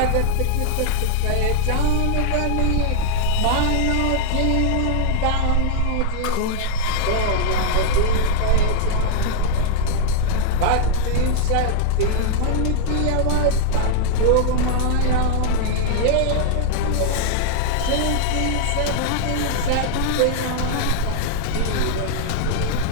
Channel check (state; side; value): different; both; correlation -0.01